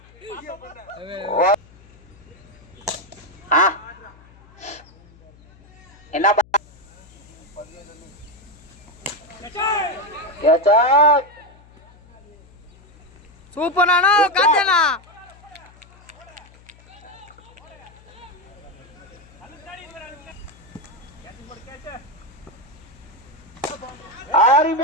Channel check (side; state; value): left; noise; hum, 25 dB below the sound